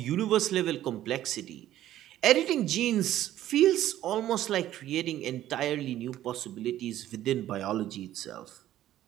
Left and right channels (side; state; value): left; quieter; 13.1 dB